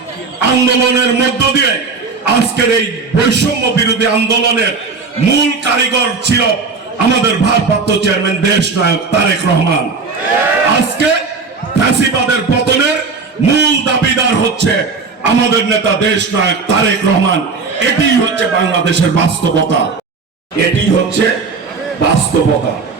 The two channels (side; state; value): left; quieter; 4.6 dB